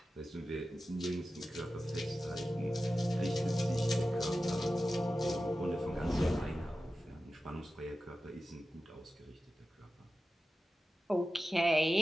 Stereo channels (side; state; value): both; normal; correlation 0.94